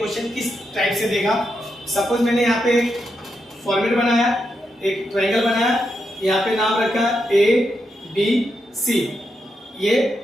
किस टाइप से देगा। सपोज मैंने यहाँ पे फॉर्मेट बनाया, एक ट्रायंगल बनाया, यहाँ पे नाम रखा ए बी सी, ये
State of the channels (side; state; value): both; normal; correlation 0.84